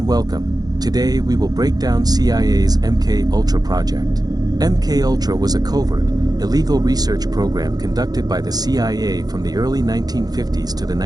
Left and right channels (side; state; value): left; late; 0.19 ms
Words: welcome. Today we will break down CIA's MK Ultra project. MK Ultra was a covert, illegal research program conducted by the CIA from the early 1950s to the